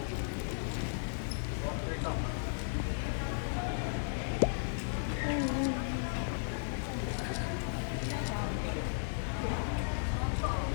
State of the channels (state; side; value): silent; right; digital silence